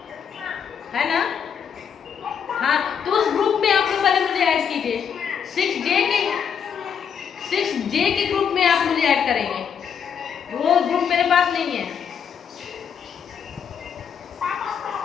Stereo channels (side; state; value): right; quieter; 7.5 dB